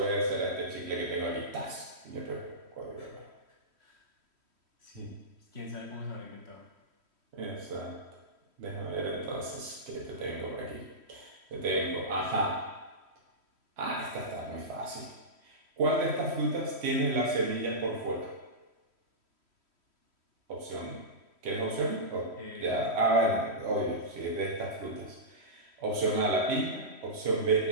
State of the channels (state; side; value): late; left; 3.1 ms